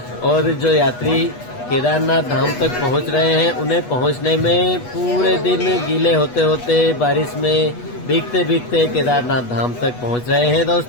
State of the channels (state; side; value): late; right; 8.2 ms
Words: और जो यात्री केदारनाथ धाम तक पहुंच रहे हैं उन्हें पहुंचने में पूरे दिन गीले होते होते बारिश में भीगते भीगते केदारनाथ धाम तक पहुंच रहे हैं